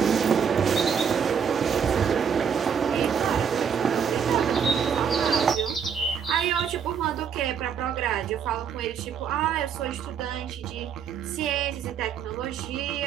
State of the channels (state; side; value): quieter; left; 7.2 dB